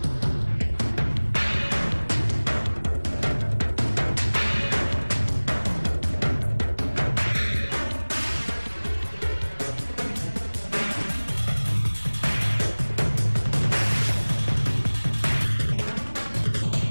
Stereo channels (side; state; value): both; inverted; correlation -1.00